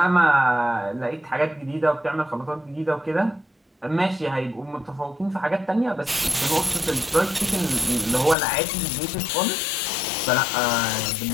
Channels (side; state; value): right; drops out; at 8.3 s